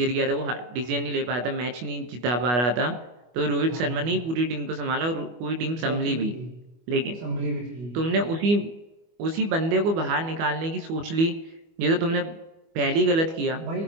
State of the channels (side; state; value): left; late; 25 ms